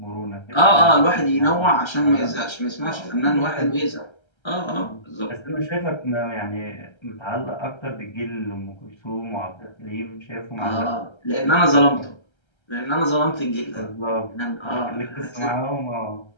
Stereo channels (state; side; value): late; right; 1.3 ms